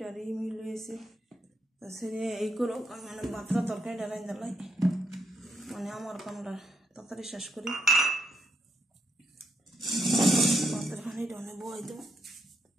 মিল হয়েছে। তা সেরে এই করো মানে ভাতটা তরকারিটা রাঁধতে লাই, মানে আমার কামটা তাড়াতাড়ি শেষ করি। ভাতের খানিটা অনেক বই দেবো।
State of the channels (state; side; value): normal; both; correlation 0.79